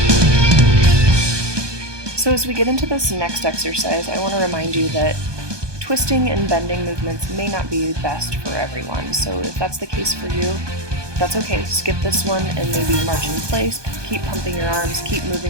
So as we get into this next exercise, I want to remind you that twisting and bending movements may not be best for everyone, so if that's the case for you, that's okay. Skip this one and maybe march in place, keep pumping your arms, keep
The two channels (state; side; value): late; left; 1.2 ms